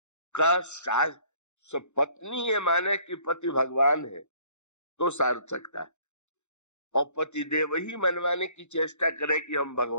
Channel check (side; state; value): right; late; 0.83 ms